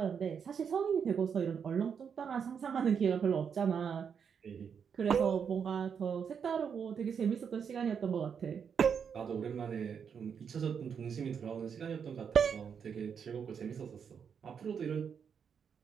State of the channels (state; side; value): quieter; left; 7.0 dB